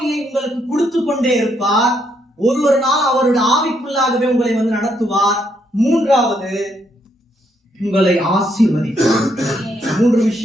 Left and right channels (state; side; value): normal; both; correlation 0.75